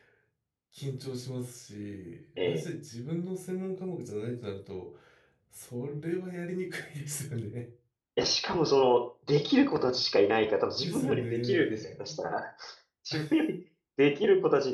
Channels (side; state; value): both; identical; correlation 1.00